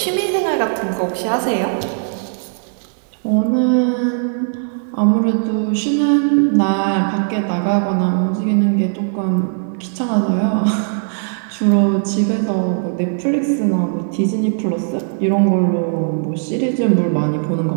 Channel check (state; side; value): silent; left; digital silence